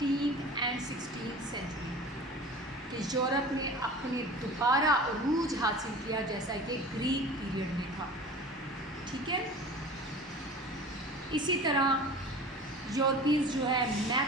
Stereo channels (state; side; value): normal; both; correlation 0.39